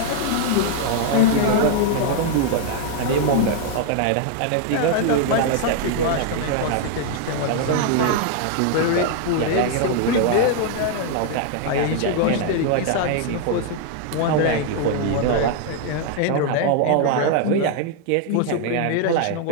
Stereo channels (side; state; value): both; different; correlation 0.00